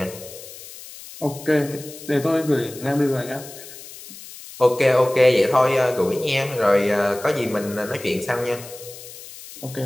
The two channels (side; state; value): left; noise; hiss, 15 dB below the sound